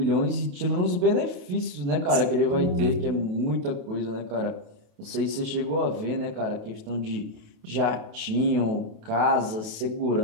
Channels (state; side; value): late; left; 28 ms